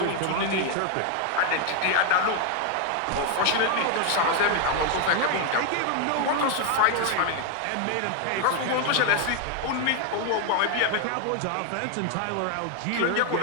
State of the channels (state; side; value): different; both; correlation 0.00